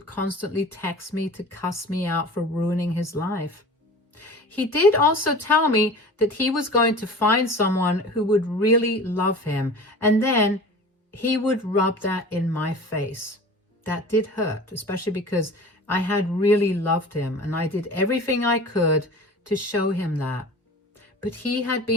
constantly text me to cuss me out for ruining his life. He did also tell me that he was going to find someone who would really love him, and then he would rub that in my face. That did hurt, especially because I had really loved him, and I did everything I could to show him that. But he had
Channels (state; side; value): normal; both; correlation 0.38